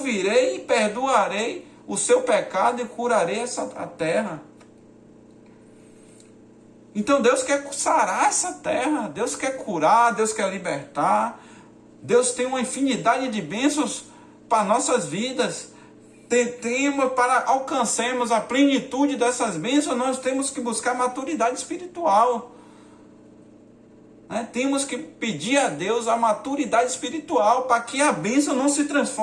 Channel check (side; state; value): both; identical; correlation 1.00